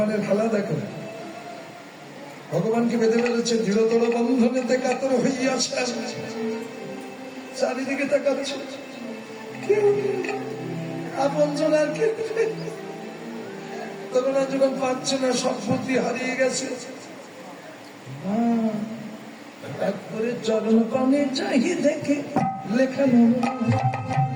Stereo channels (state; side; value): identical; both; correlation 1.00